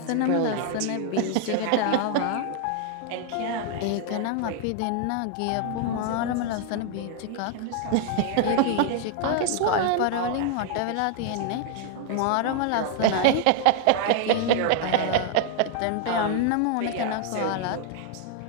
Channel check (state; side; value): different; both; correlation 0.00